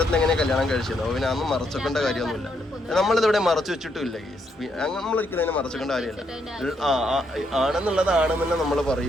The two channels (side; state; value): both; normal; correlation 0.76